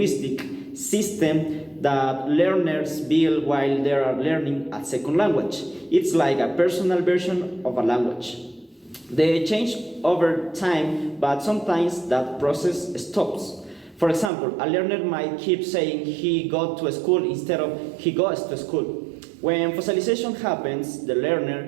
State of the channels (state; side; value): drops out; left; at 14.3 s